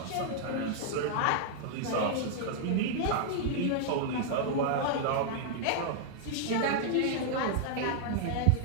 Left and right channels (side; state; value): both; different; correlation -0.01